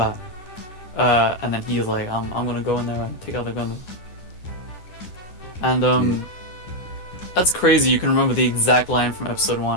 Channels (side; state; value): right; late; 11 ms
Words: And then he's like, I'm gonna go in there and take out the Gundam. And that's crazy. You can remember the exact line from episode